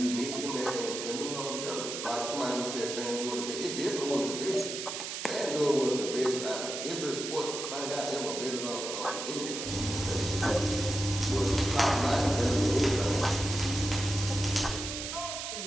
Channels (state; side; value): noise; right; hiss, 5 dB below the sound